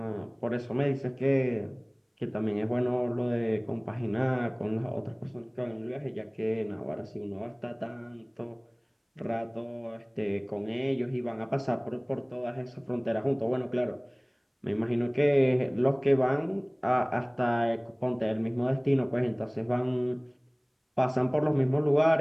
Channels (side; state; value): both; identical; correlation 1.00